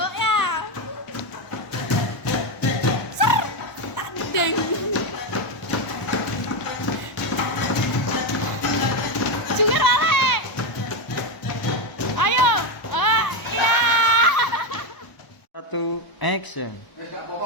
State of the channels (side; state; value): right; late; 1.0 ms